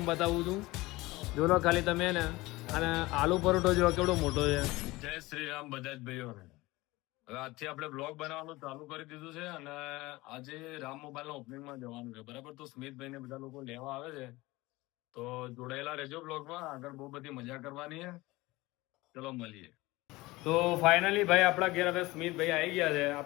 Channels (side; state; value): right; quieter; 20.5 dB